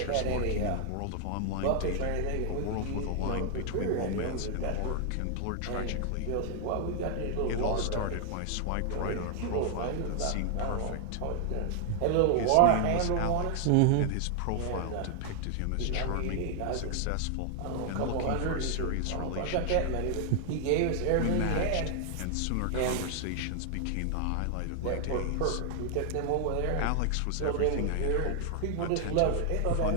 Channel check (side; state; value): both; different; correlation 0.00